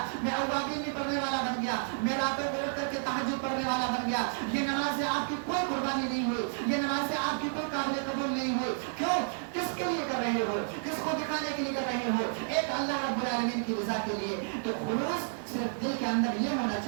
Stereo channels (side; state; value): left; silent; digital silence